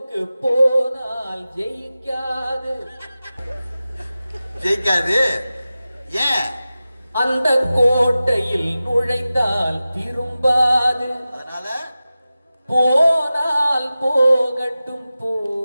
போனால் ஜெயிக்காது. ஜெயிக்காது ஏன்? அந்த கோட்டையில் நுழைந்தால் திரும்பாது. அதனால போனால் போகட்டும்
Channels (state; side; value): inverted; both; correlation -0.95